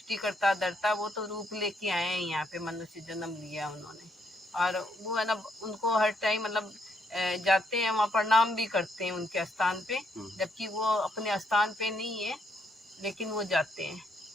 करता धरता, वो तो रूप लेके आए हैं यहाँ पे, मनुष्य जन्म लिया उन्होंने, और वो है ना, उनको हर टाइम मतलब जाते हैं, वहाँ प्रणाम भी करते हैं उनके स्थान पे, जबकि वो अपने स्थान पे नहीं है, लेकिन वो जाते हैं।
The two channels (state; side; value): normal; both; correlation 0.74